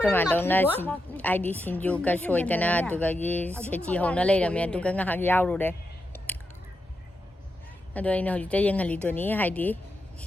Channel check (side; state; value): both; normal; correlation 0.86